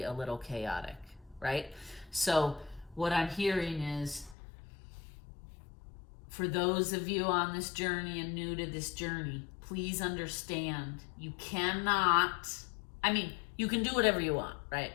a little chaotic, right? So what I'm hearing is, for those of you on this journey and new to this journey, please understand you cannot, you can do whatever you want, right?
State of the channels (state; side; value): drops out; right; at 4.4 s